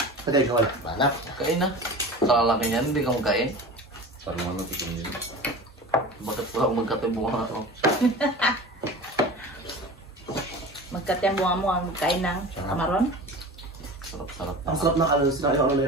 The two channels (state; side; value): normal; both; correlation 0.34